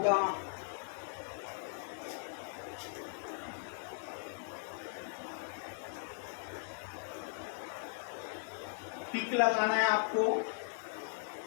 टिक लगाना है आपको।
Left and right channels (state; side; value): silent; right; digital silence